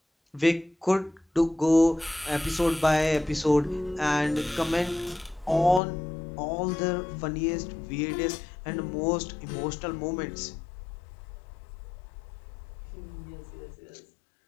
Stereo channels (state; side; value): drops out; right; at 5.8 s